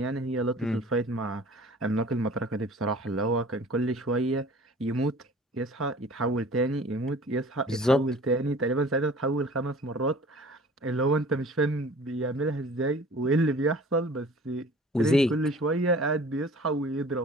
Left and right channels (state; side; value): normal; both; correlation 0.46